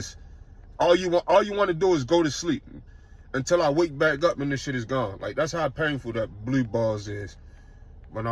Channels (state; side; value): identical; both; correlation 1.00